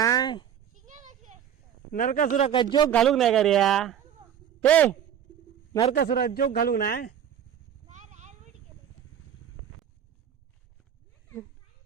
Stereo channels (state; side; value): quieter; left; 9.3 dB